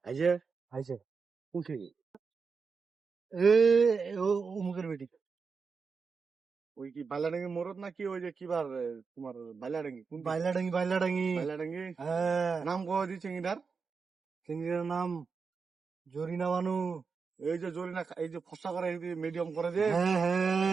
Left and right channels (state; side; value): quieter; left; 5.2 dB